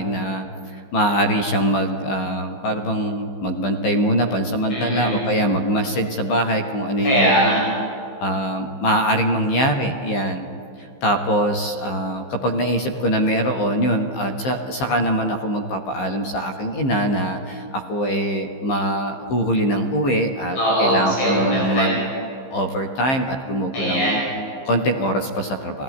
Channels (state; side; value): late; right; 15 ms